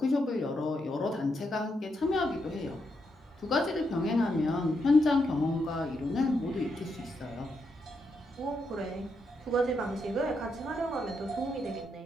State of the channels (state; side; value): normal; both; correlation 0.81